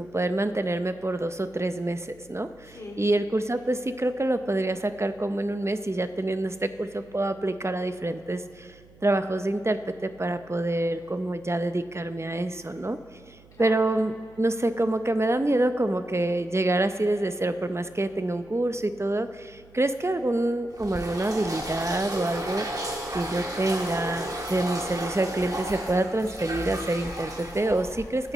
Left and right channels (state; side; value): noise; right; hum, 26 dB below the sound